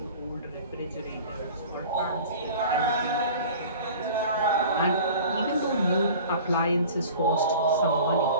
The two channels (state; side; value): inverted; both; correlation -0.42